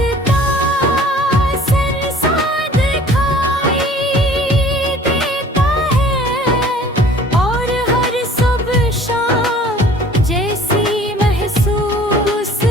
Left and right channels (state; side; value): normal; both; correlation 0.50